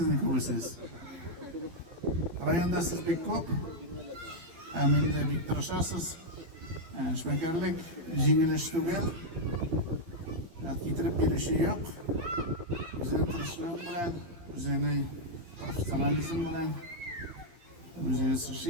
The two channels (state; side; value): late; left; 12 ms